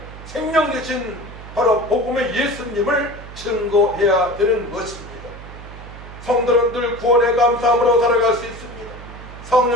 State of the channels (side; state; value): right; noise; hum, 15 dB below the sound